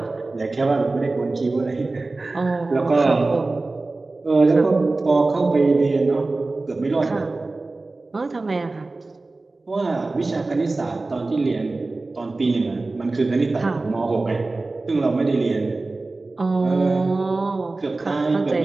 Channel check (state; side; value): quieter; left; 3.3 dB